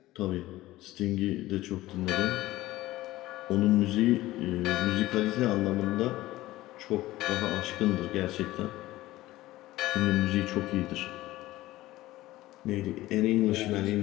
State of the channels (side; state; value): right; quieter; 16.9 dB